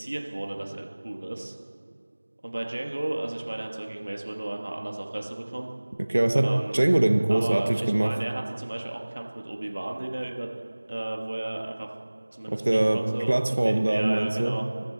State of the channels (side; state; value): both; inverted; correlation -1.00